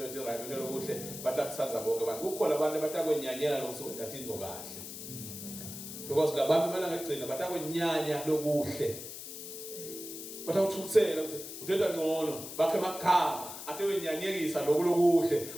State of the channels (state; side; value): noise; left; hiss, 10 dB below the sound